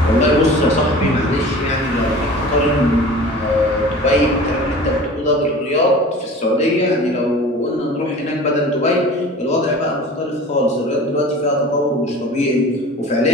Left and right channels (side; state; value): both; normal; correlation 0.40